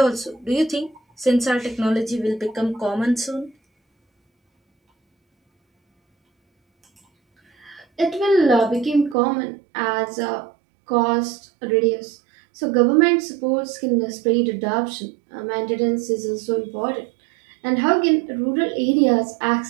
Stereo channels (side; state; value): left; drops out; at 9.2 s